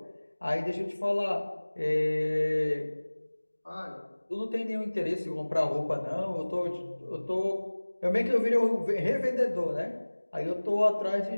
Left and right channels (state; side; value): inverted; both; correlation -1.00